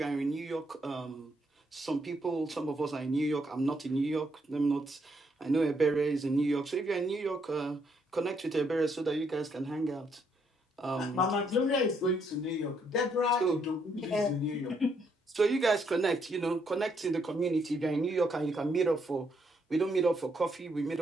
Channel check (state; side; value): normal; both; correlation 0.74